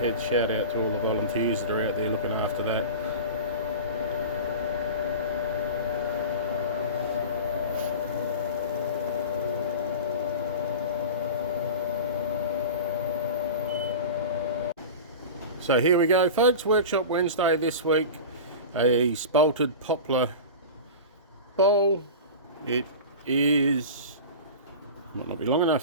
shout out to all the volunteers that are out there looking after that. So here we go, folks. Workshop Wednesday this week. A Spalted Poplar bowl. It is, might not be long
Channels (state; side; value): inverted; both; correlation -0.31